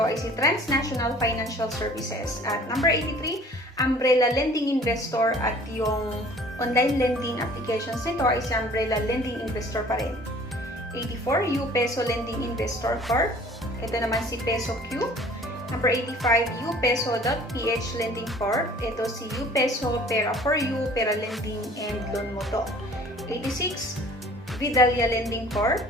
ay si Transnational Financial Services. At number 83, Umbrella Lending Investor, at yung online lending applications nito ay si Umbrella Lending Investor pa rin. 84, U-Peso Lending Investor Corp. Ito naman si Peso Q. Number 85, upeso.ph Lending Corp. Ito si U-Peso, Pera for You, Pera Lending, and Loan Moto. 86, Vidalia Lending Corp.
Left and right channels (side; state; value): both; normal; correlation 0.50